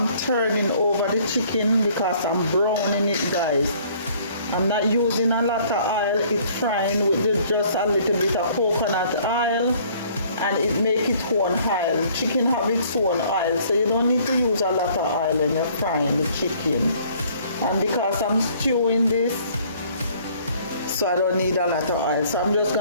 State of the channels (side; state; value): both; inverted; correlation -0.58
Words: turning over the chicken because I'm browning it guys. I'm not using a lot of oil, it's frying with just a little bit of coconut oil and it make its own oil. Chicken have its own oil, so you don't need to use a lot of oil when you're frying the chicken. And because I'm stewing this, so I don't need a lot of oil, so I'm just